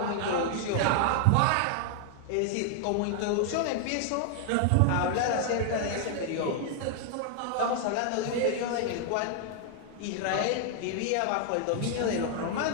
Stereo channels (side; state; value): both; different; correlation 0.00